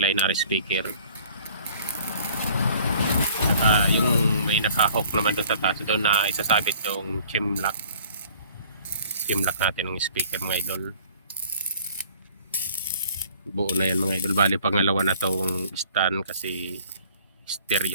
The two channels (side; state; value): both; inverted; correlation -0.54